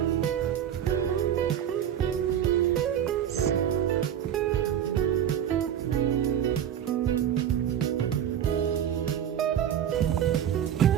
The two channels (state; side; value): quieter; left; 9.7 dB